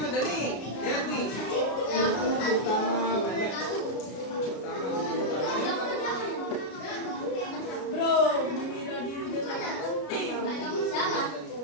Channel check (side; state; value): right; late; 33 ms